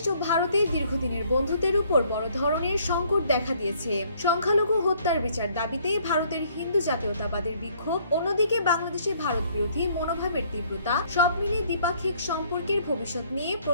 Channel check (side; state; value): both; inverted; correlation -0.63